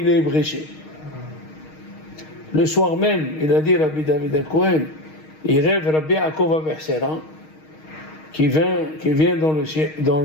est ébréché. Le soir même, il a dit, Rabbi David Akohen, il rêve Rabbi Yaakov Averseran, qui vient dans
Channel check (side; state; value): right; late; 6.4 ms